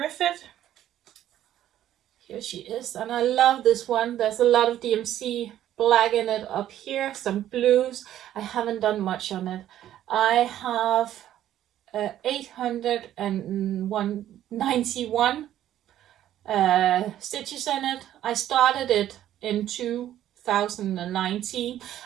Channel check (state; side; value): quieter; left; 12.0 dB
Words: Here she is, and I love this one. There's a lot of DMC black in it up here, some blues. I haven't done much on it. I have 891 stitches in it. I started it in 2019.